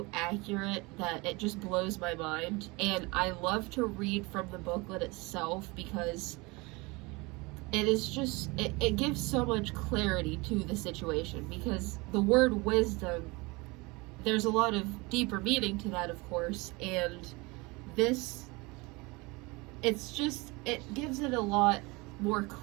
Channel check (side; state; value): left; quieter; 25.2 dB